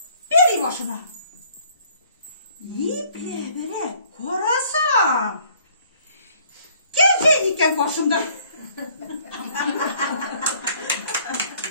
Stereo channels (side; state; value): both; inverted; correlation -0.60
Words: beri başına. İple bere korasam. Gece iken başımda.